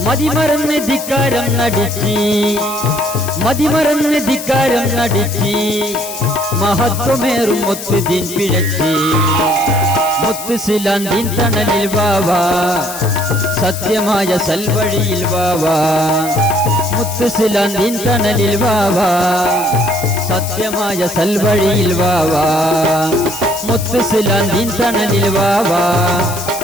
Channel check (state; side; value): noise; left; hiss, 10 dB below the sound